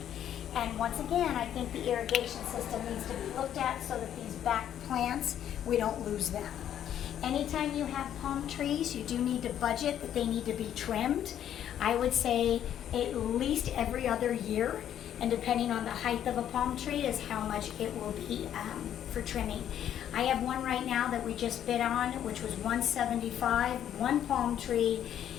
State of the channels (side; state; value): right; quieter; 10.3 dB